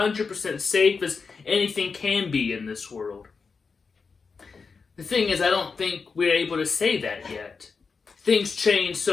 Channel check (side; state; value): right; quieter; 5.0 dB